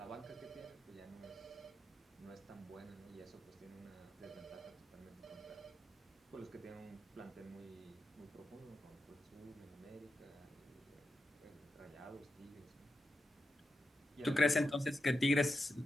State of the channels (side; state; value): both; normal; correlation 0.88